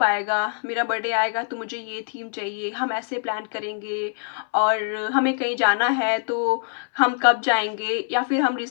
आएगा? मेरा बर्थडे आएगा तो मुझे ये थीम चाहिए, हम ऐसे प्लान करेंगे और हमें कहीं जाना है तो हम कब जाएँगे? या फिर हम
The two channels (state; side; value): silent; right; 59 dB below the other